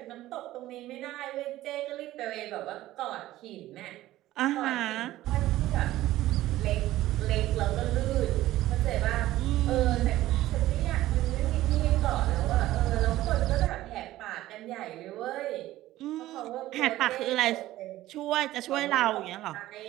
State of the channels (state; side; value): quieter; left; 15.4 dB